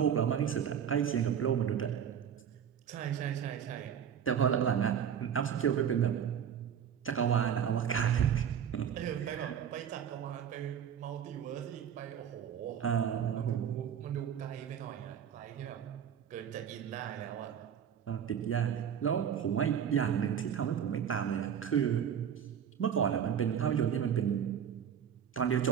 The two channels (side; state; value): left; quieter; 8.5 dB